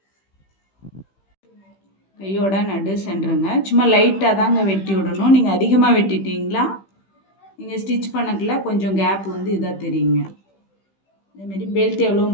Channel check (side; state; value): right; late; 15 ms